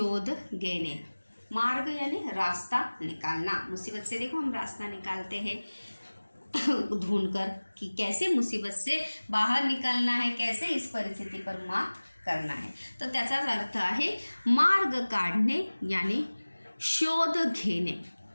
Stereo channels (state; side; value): inverted; both; correlation -1.00